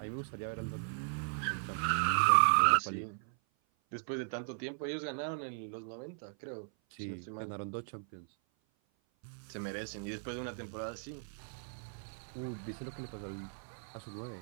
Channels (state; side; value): silent; left; 53 dB below the other